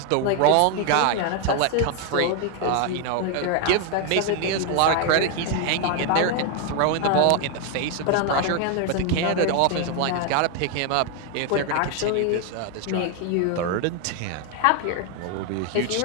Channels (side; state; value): both; different; correlation 0.01